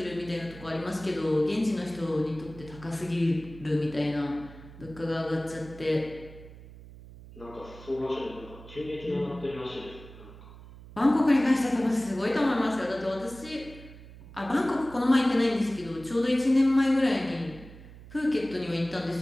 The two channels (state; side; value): noise; right; hum, 18 dB below the sound